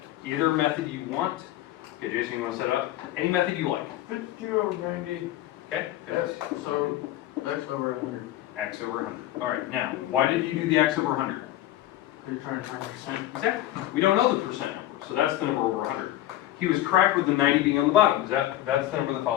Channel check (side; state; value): right; quieter; 14.2 dB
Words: Either method you want. Okay, Jason, you want to set it up? Any method you like. 50 over 90. Okay? Yes, so X over 100. X over 100. All right, now, why did you do the X over 100? You're trying to find percent. Exactly. We don't know the percent number, so that's the number over 100. He was correct with the 90 being on the bottom. That's the number that